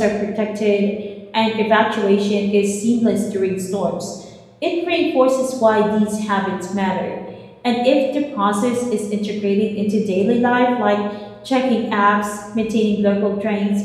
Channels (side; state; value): both; identical; correlation 1.00